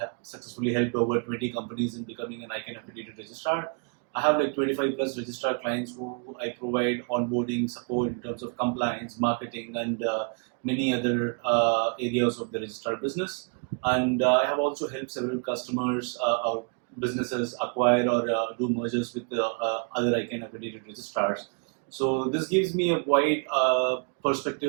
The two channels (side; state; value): left; quieter; 39.4 dB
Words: successfully helped over 20 companies in becoming an ICANN accredited registrar. I have like 25 plus registrar clients who I provide onboarding support in terms of compliance, marketing, and many other areas of the registrar business. And I have also helped several customers or businesses acquire or do mergers with other ICANN accredited registrars. So this gives me a wide